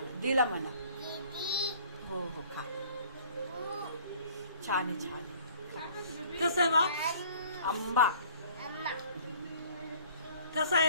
दिला म्हणा हो हो खा छान आहे छान आहे कसं आहे बा आंबा कसा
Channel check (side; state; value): both; inverted; correlation -0.52